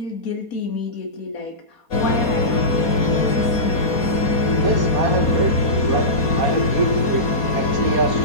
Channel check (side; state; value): right; late; 4.2 ms